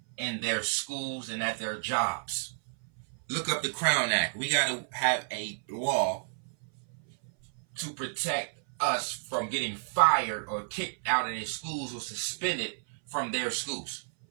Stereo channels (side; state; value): left; silent; 57 dB below the other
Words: in their schools and at their jobs. Look up the Crown Act. We got to have a law to protect us from getting fired or kicked out of their schools or suspended from their schools.